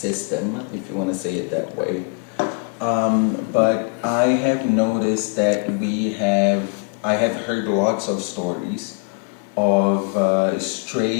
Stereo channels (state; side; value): quieter; right; 35.7 dB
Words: if you want to say it that way. But I have noticed that I have heard lots of stories of